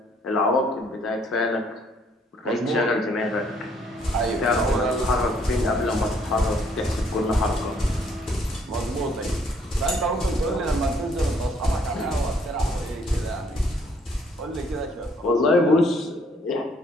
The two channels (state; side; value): normal; both; correlation 0.65